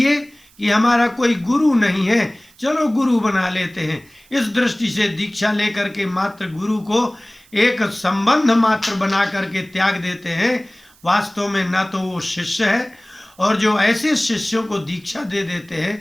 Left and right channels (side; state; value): right; noise; hiss, 29 dB below the sound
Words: कि हमारा कोई गुरु नहीं है, चलो गुरु बना लेते हैं, इस दृष्टि से दीक्षा लेकर के मात्र गुरु को एक संबंध मात्र बना करके त्याग देते हैं। वास्तव में न तो वो शिष्य है, और जो ऐसे शिष्यों को दीक्षा दे देते